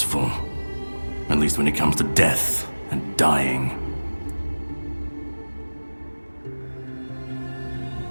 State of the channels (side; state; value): both; inverted; correlation -1.00